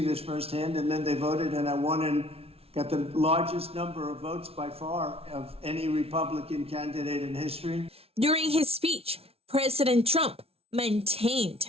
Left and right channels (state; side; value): late; left; 0.29 ms